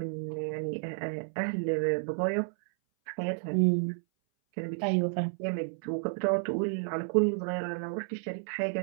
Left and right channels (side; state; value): left; silent; 57 dB below the other